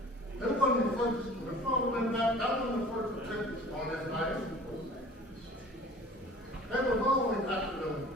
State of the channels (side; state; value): both; normal; correlation 0.45